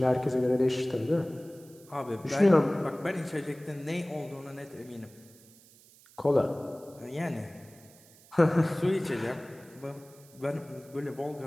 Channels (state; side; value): noise; right; hiss, 25 dB below the sound